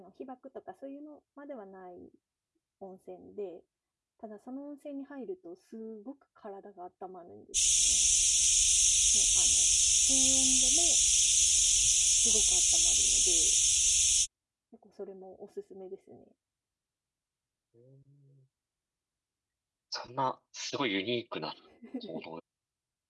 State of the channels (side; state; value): both; identical; correlation 1.00